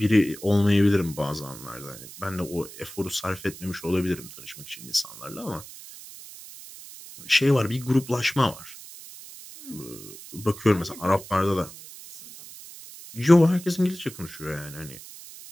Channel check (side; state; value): right; noise; hiss, 16 dB below the sound